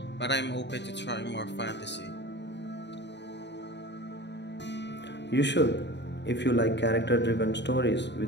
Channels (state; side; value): late; right; 0.51 ms